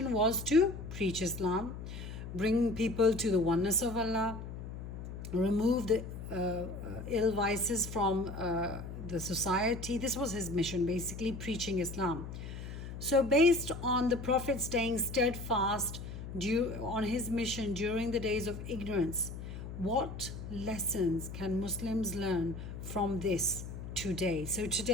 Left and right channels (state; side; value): noise; left; hum, 9 dB below the sound